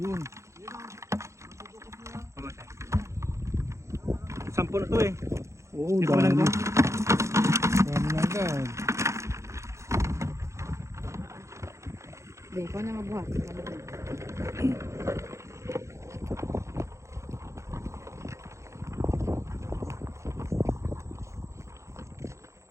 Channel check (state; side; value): late; left; 0.14 ms